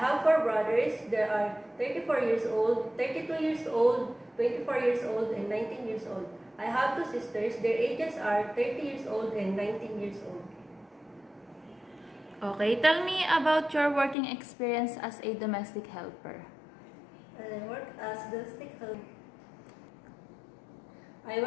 4 brothers. They are 34 years old, 32 years old, 24 years old, and 19 years old. I have 2 sisters. Their ages are 30 years old and 19 years old. Okay, tell me about your working experience as a domestic helper. I work as domestic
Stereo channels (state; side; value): drops out; right; at 14.2 s